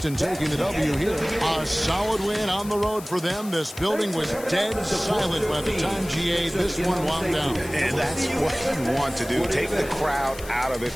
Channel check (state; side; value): noise; left; hiss, 15 dB below the sound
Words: taking the W here. A solid win on the road for them. This building was dead silent by the time GA this one wound down. And that's what you want to do. Take the crowd out of